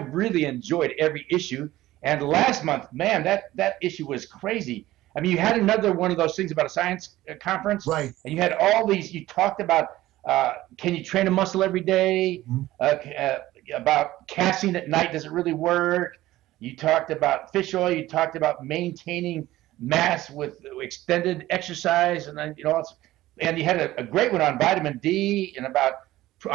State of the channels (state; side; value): quieter; left; 16.0 dB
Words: enjoyed every issue. And last month, man, that issue was crazy. I mean, you had another one of those things about a science conference. Right. And you had all these, you talked about can you train a muscle every day? About casting at night, does it really work? You talked about fish oil. You talked about maintaining mass with extended exercise, and then and you had a great one on vitamin D and about